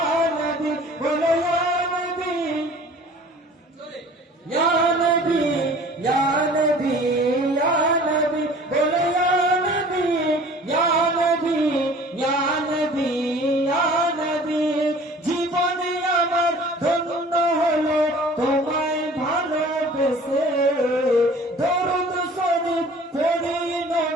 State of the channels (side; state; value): both; normal; correlation 0.47